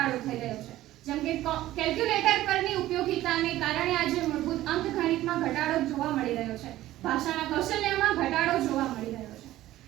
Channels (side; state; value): left; quieter; 15.0 dB